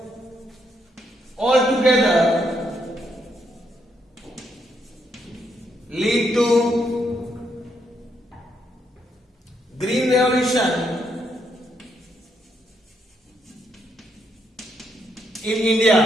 altogether lead to green revolution in India.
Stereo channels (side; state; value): both; normal; correlation 0.76